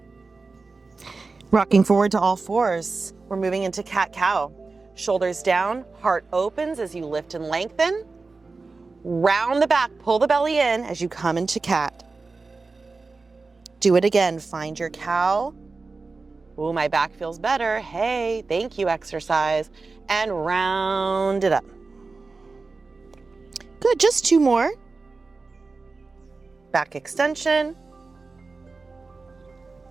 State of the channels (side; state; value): left; quieter; 4.0 dB